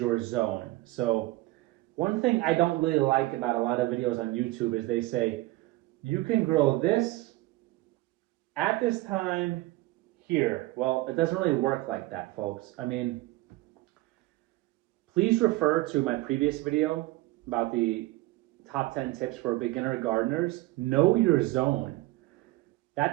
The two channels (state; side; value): quieter; left; 19.6 dB